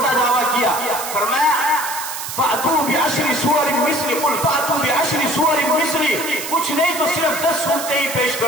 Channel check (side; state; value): right; noise; hiss, 7 dB below the sound